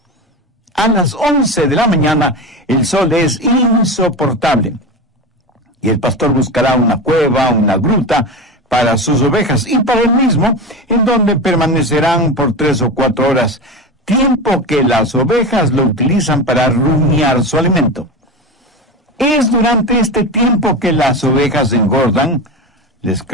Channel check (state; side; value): normal; both; correlation 0.23